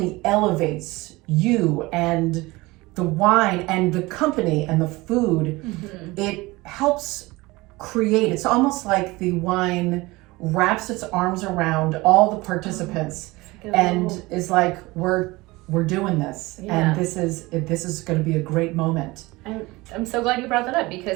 elevates you and the wine and the company and the food, it helps create, it's almost like the wine wraps its arms around all the participants and is like, we're doing this, and this is going to be a great moment. I'm so glad you brought that up,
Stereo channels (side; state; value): left; quieter; 21.7 dB